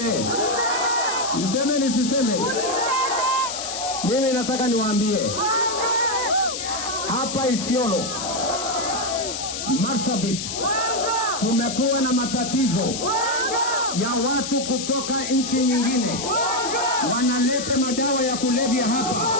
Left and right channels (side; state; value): left; noise; hiss, 5 dB below the sound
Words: Niseme nisiseme? Mimi nataka niwaambie. Hapa Isiolo, Marsabit, tumekuwa na matatizo ya watu kutoka nchi nyingine wanaleta madawa ya kulevya hapa,